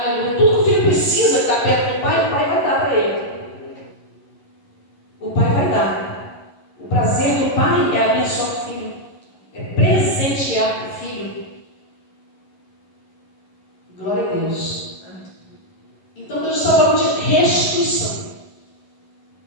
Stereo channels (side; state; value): right; late; 11 ms